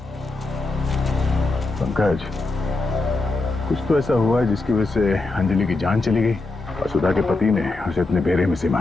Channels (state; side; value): quieter; right; 3.2 dB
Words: पंकज, कुछ तो ऐसा हुआ है जिसकी वजह से अंजलि की जान चली गई और सुधा के पति ने उसे इतने बेरे में से